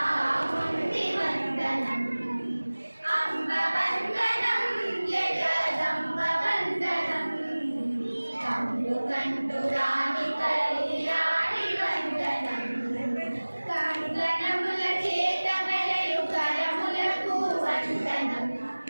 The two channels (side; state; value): both; inverted; correlation -1.00